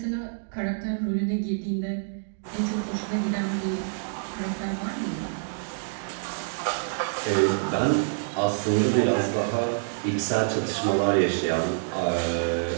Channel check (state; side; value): silent; left; digital silence